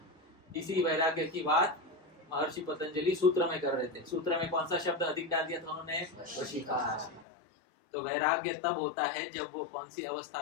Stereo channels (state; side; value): drops out; right; at 7.2 s